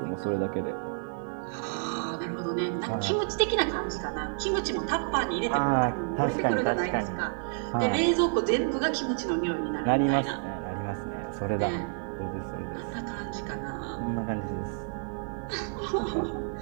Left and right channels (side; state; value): left; silent; 58 dB below the other